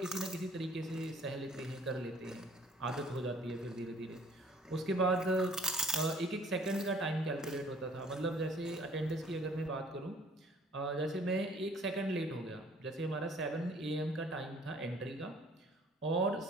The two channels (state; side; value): normal; both; correlation 0.55